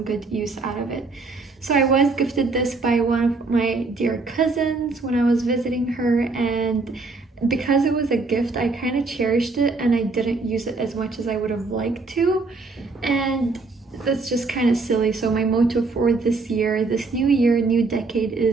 good use out of it. So I was gifted this by one of my dear cousins when I was visiting her, and because it was a gift, I kind of cherished it and I didn't use it as much as I would have liked to, and that's just kind of silly. So my motto for this year, this new year, new decade,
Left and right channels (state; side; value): quieter; left; 3.8 dB